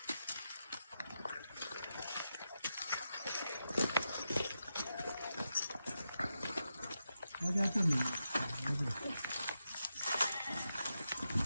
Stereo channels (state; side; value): inverted; both; correlation -0.87